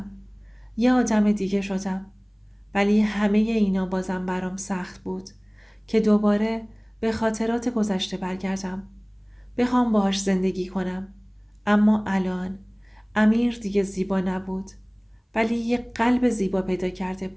یه آدم دیگه شدم. ولی همه اینا بازم برام سخت بود که دوباره به خاطرات گذشته برگردم. بخوام باهاش زندگی کنم. اما الان امیر دیگه زیبا نبود، ولی یه قلب زیبا پیدا کرده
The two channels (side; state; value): both; identical; correlation 1.00